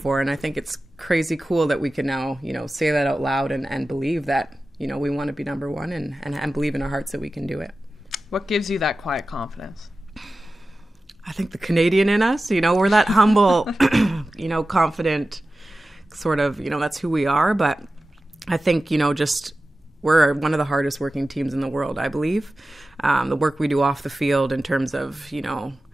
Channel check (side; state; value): both; normal; correlation 0.95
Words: And I think it's crazy cool that we can now, say that out loud and believe that, we want to be number one and believe in our hearts that we can do it. What gives you that quiet confidence? I think the Canadian in us, we're that humble, confident sort of, that's who we are. But I think, just we're one of the hardest working teams in the world, I believe. The work we do off the field in terms of,